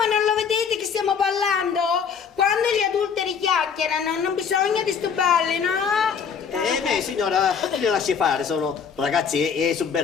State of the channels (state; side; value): quieter; right; 6.7 dB